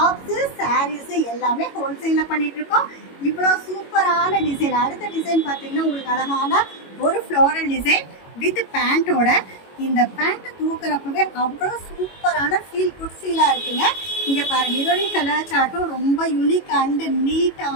சாரீஸு எல்லாமே ஹோல்சேலில் பண்ணிட்டு இருக்கோம். இவ்வளோ சூப்பரான டிசைன். அடுத்த டிசைன் பார்த்தீங்கன்னா உங்களுக்கு அழகான ஒரு ஃப்ளோரல் டிசைன் வித் பேண்ட்டோட. இந்த பேண்ட்டை தூக்குறப்பவே அவ்வளோ சூப்பரான குட் ஃபீலாக இருக்குங்க. இங்கே பாருங்கள், இதோடைய கலர் சார்ட்டும் ரொம்ப யூனிக் அண்டு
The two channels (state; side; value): late; right; 22 ms